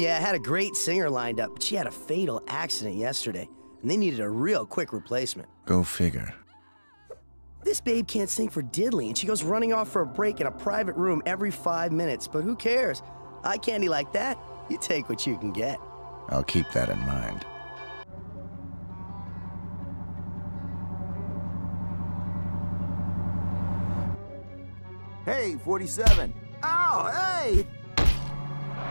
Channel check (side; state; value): both; inverted; correlation -1.00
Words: I had a great singer lined up, but she had a fatal accident yesterday, and they needed a real quick replacement. Go figure. This babe can't sing for diddly, and she goes running off for a break in a private room every 5 minutes, but who cares? Eye candy like that, you take what you can get. I'll keep that in mind. Hey, 47. Oh, hey!